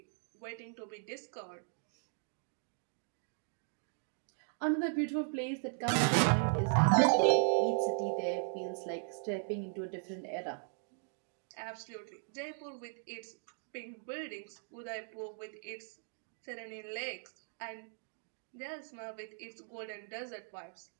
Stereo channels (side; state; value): left; silent; digital silence